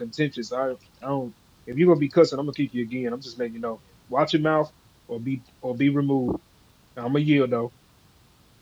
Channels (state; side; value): identical; both; correlation 1.00